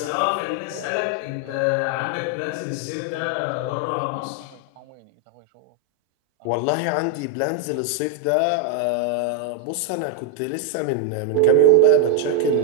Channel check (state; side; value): different; both; correlation 0.01